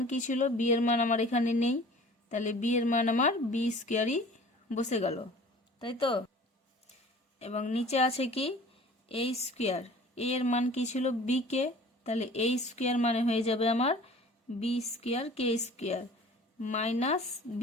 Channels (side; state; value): both; normal; correlation 0.46